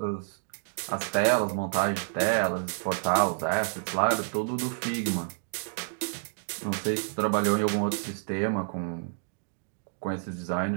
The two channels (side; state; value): left; silent; digital silence